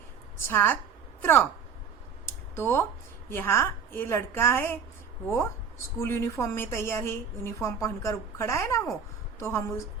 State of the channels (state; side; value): quieter; left; 6.3 dB